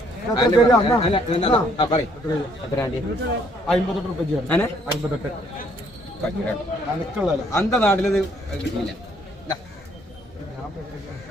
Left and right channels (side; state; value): both; normal; correlation 0.66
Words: അന്ത നാട്ടിലത് കിട്ടിയില്ല.